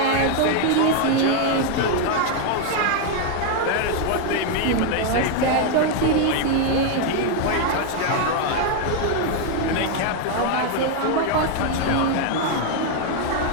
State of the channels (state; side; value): different; both; correlation 0.01